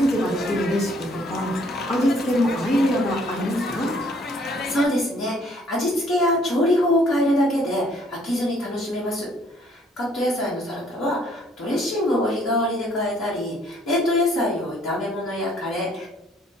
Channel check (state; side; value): normal; both; correlation 0.62